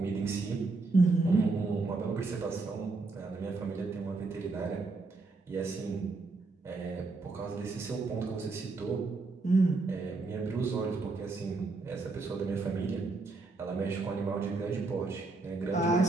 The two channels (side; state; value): left; quieter; 3.7 dB